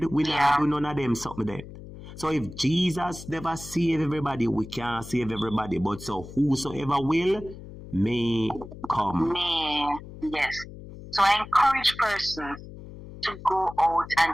We not do none of them something there. So if Jesus never save everybody, we can't save everybody. But so whosoever will, may come. May, yes. So I encourage persons to go out and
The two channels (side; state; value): left; noise; hum, 14 dB below the sound